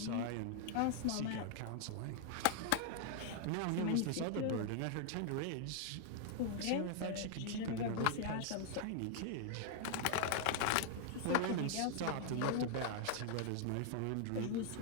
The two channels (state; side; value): different; both; correlation 0.00